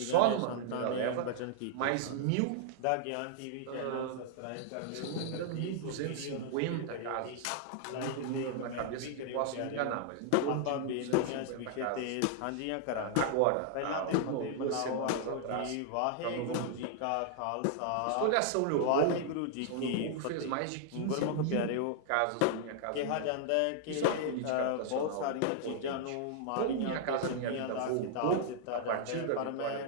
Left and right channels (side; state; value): both; different; correlation -0.01